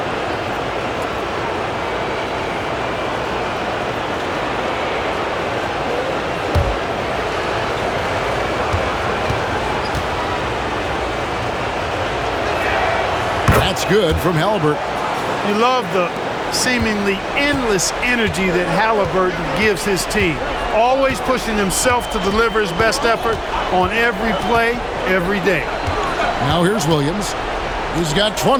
That's good from Halliburton. You love the seemingly endless energy that Halliburton gives his team. Always pushing himself to deliver his best effort on every play, every day. Now here's Williams. He's got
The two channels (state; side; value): identical; both; correlation 1.00